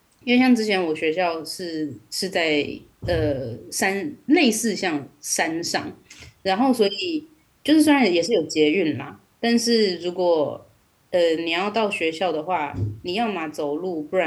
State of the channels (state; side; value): identical; both; correlation 1.00